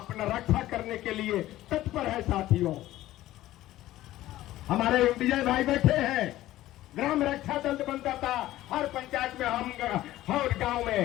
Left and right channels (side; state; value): right; quieter; 15.1 dB